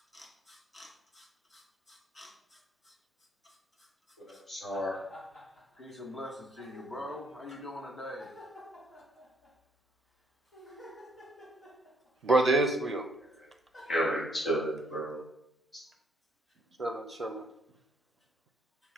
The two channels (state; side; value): normal; both; correlation 0.67